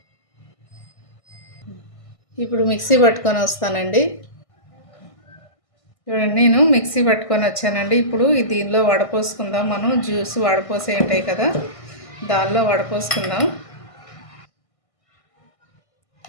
ఇప్పుడు మిక్సీ పట్టుకొని వస్తానండి. చూడండి, నేను మిక్సీ పట్టుకొని వచ్చానండి. ఇప్పుడు దీనిలో వడపోసుకుందాం. మనం జ్యూస్ వడపోసే ఉంటాయి కదా, దానిలో వడపోసుకుందాం.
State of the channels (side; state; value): right; late; 1.5 ms